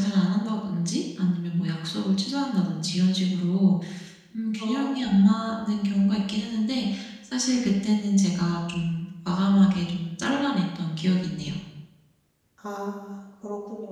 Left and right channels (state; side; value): identical; both; correlation 1.00